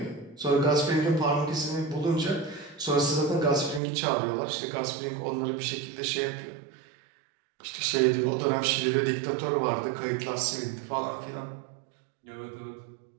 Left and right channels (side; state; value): left; drops out; at 3.8 s